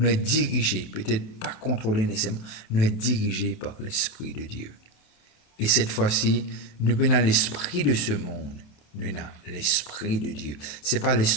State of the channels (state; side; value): late; right; 28 ms